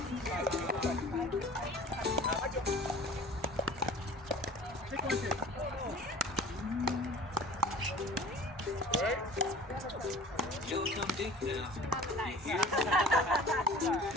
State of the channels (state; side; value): normal; both; correlation 0.44